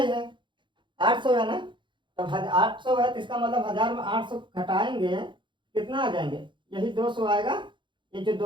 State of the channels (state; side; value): late; left; 0.23 ms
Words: है, 800 है ना, तब 800 है, तो इसका मतलब 1000 में 800 घटाएंगे कितना आ जाएंगे, यही 200 आएगा, ये जो